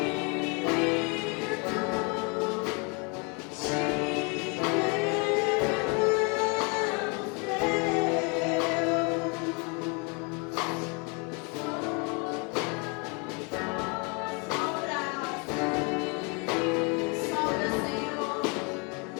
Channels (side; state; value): right; quieter; 32.8 dB